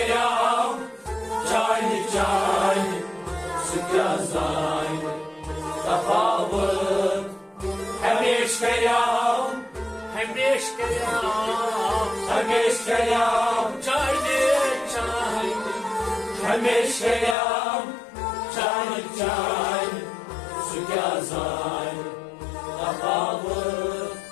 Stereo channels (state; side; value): drops out; right; at 17.4 s